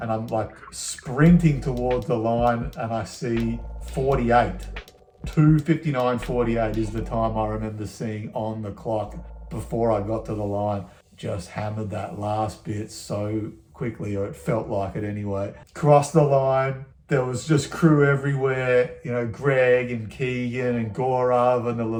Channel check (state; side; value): identical; both; correlation 1.00